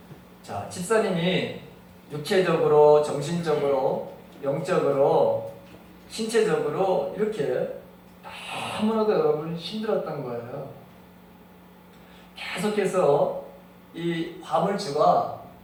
자, 집사님이 육체적으로, 정신적으로, 영적으로, 신체적으로 이렇게 너무나도 여러분 힘들었던 거예요. 계속해서 이 화물주가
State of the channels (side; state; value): both; identical; correlation 1.00